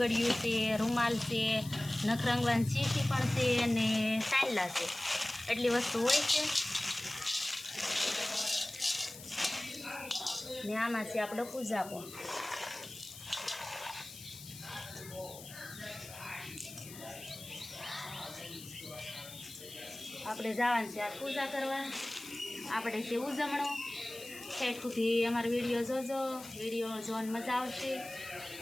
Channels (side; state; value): left; noise; hiss, 14 dB below the sound